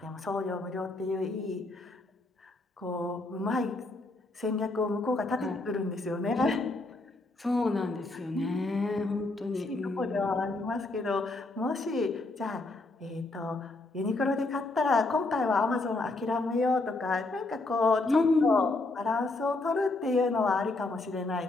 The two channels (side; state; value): right; quieter; 3.1 dB